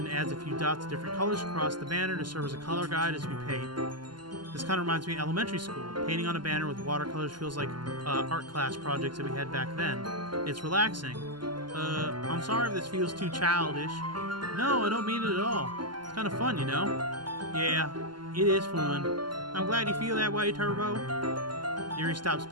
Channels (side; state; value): left; late; 0.71 ms